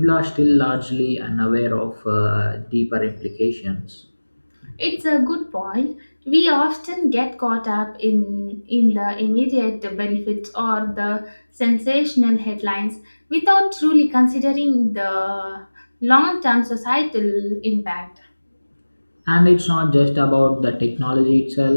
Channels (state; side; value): inverted; both; correlation -1.00